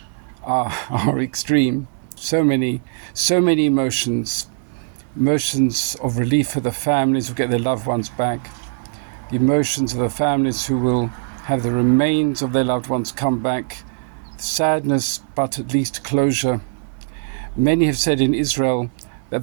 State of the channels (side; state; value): left; silent; 65 dB below the other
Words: are extreme. So many emotions of relief for the families who get their loved ones back, the emotions of the families who will have the remains of their loved ones come back, sadness, but at least closure. Many have said in Israel